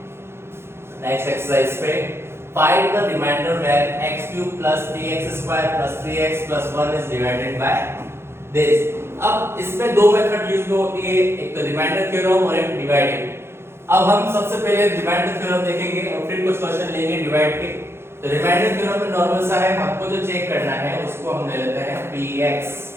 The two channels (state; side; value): late; left; 0.12 ms